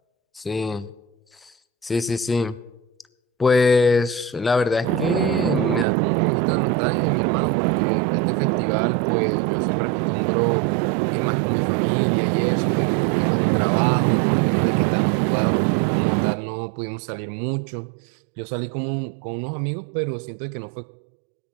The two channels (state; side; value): drops out; left; at 5.9 s